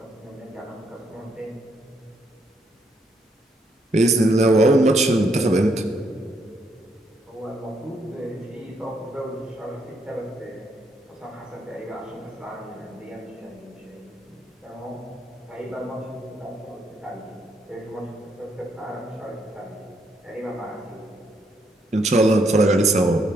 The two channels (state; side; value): normal; both; correlation 0.74